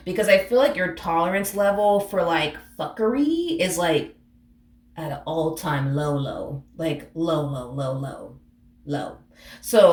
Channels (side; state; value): both; identical; correlation 1.00